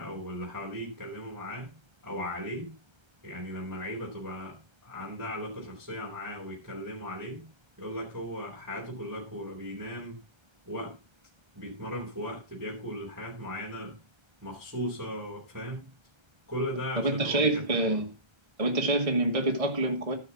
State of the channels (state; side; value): late; left; 1.3 ms